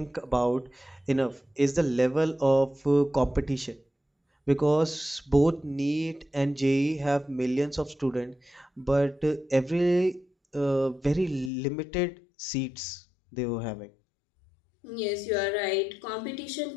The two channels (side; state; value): right; drops out; at 11.5 s